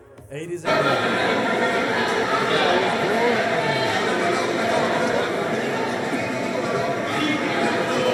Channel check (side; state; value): both; identical; correlation 1.00